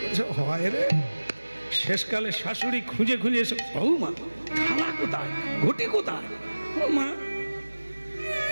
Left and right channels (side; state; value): both; inverted; correlation -1.00